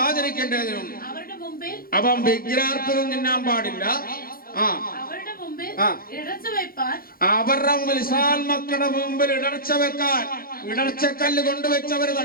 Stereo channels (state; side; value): late; right; 0.42 ms